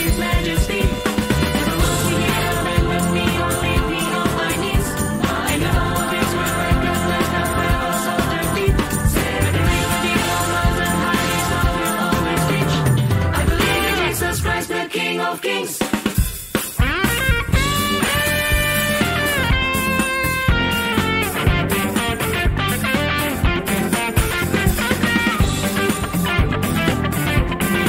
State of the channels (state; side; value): identical; both; correlation 1.00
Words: majesty. Never will we hear and when we all leave me on my knees. In the hall of his word, and let the fellows of their feet. Say that the reality of mountain high, his love will always reach. I believe in Jesus Christ, the King of Kings.